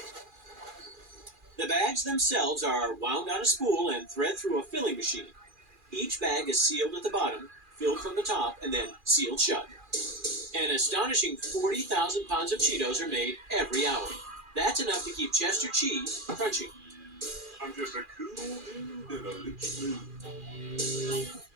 The bags themselves are wound on a spool and thread through a filling machine. Each bag is sealed at the bottom, filled from the top, and then sealed shut. An astonishing 40,000 pounds of Cheetos are made every hour. That's enough to keep Chester cheese crunchy. I'm just a cool dude in a rich mood.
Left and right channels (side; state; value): left; late; 2.4 ms